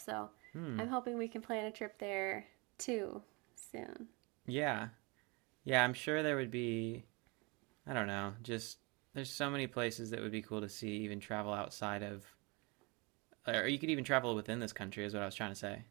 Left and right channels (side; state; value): left; quieter; 28.3 dB